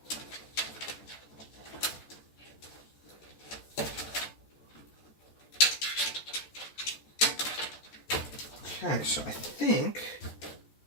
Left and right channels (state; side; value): late; right; 14 ms